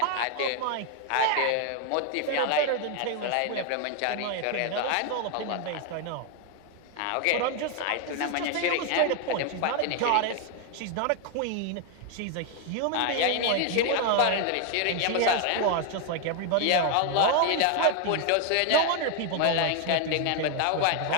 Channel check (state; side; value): different; both; correlation 0.00